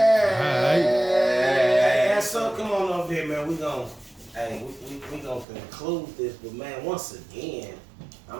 Hey, so come on over here, man. We gonna conclude this, but man, once again,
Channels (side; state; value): left; drops out; at 5.5 s